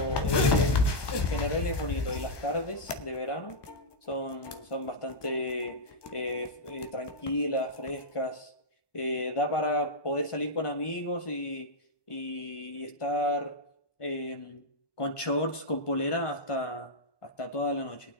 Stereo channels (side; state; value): right; late; 1.2 ms